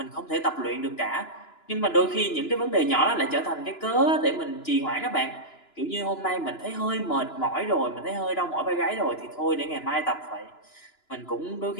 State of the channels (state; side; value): late; right; 2.9 ms